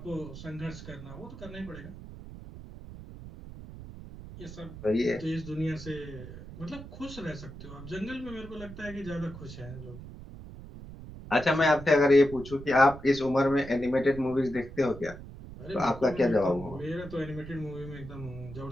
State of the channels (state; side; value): noise; right; rumble, 13 dB below the sound